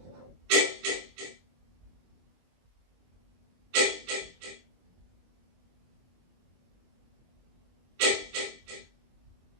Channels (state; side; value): late; left; 23 ms